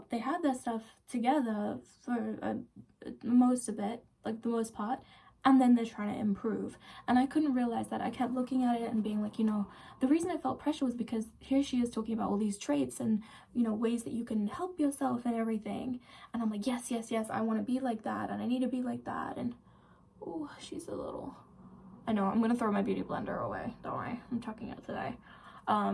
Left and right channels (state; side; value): identical; both; correlation 1.00